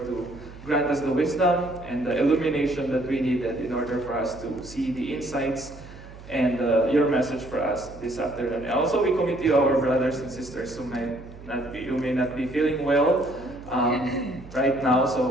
to grant us the wisdom and the illumination that we needed in order for us to see the insights and your message for us this afternoon. And also we commit to you our brothers and sisters who may not be feeling well right now.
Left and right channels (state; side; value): noise; right; hum, 17 dB below the sound